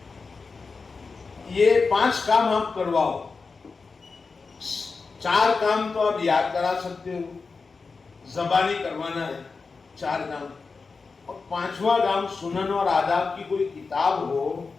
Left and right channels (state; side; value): quieter; right; 4.5 dB